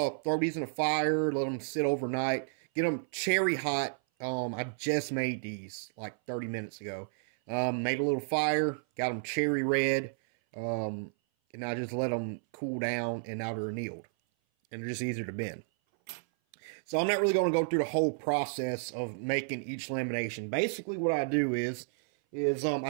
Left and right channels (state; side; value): silent; left; 57 dB below the other